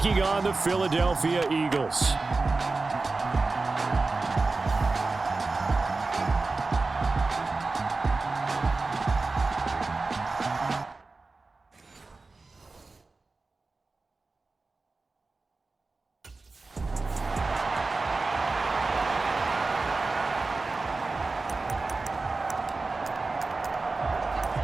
on the Philadelphia Eagles.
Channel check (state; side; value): quieter; left; 3.7 dB